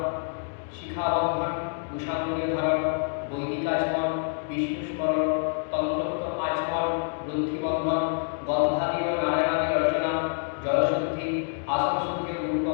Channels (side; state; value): right; silent; 60 dB below the other